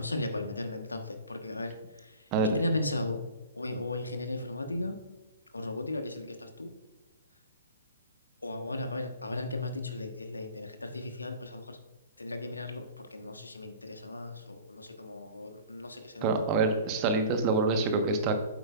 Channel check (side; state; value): both; inverted; correlation -0.41